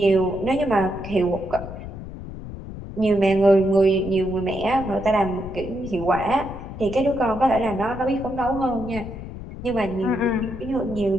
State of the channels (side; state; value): left; noise; rumble, 11 dB below the sound